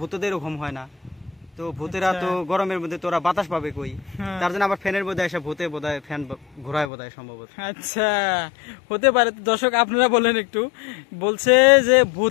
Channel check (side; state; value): right; drops out; at 6.9 s